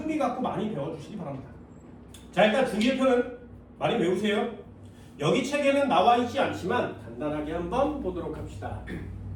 갖고 많이 배워주시기 바랍니다. 자, 일단 주기율표는 많이 외우세요. 여기 책에는 나와 있지 않지만 간단하게 한번 보도록 합시다.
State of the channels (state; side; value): identical; both; correlation 1.00